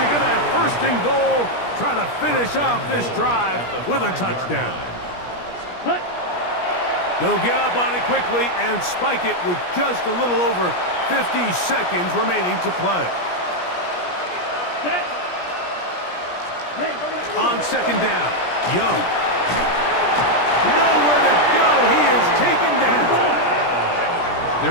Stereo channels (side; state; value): right; late; 17 ms